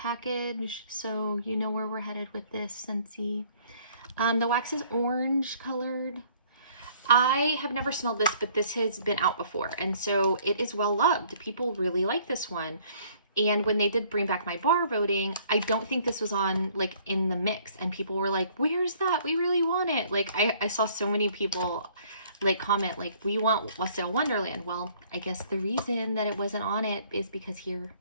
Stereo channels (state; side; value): inverted; both; correlation -0.60